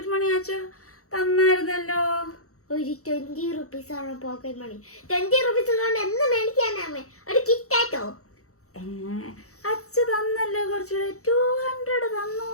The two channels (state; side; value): late; right; 0.64 ms